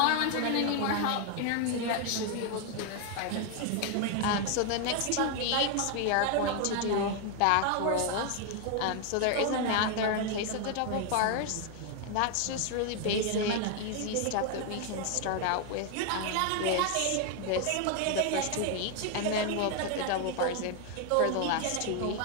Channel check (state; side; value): different; both; correlation 0.01